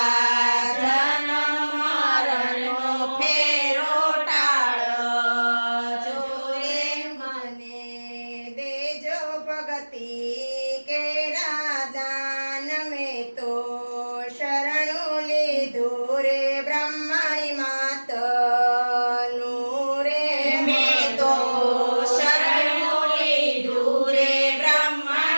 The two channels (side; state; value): both; inverted; correlation -1.00